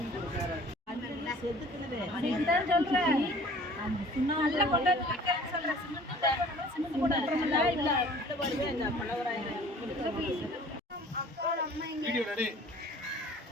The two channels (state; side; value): normal; both; correlation 0.49